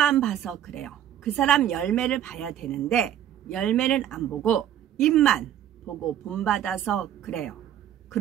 봐서 그래요. 그 사람 열매를 봐야 되는데 열매는 안 보고 입만 보고 본받아서 그래요.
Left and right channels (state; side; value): quieter; left; 10.5 dB